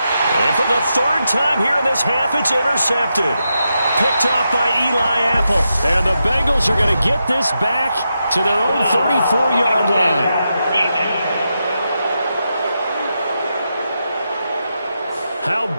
And for the 3rd time here in this half, it's intercepted. Picked off by Eli Apple. And the Bengals are going to get this back to their own 34-yard line. How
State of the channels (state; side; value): inverted; both; correlation -0.86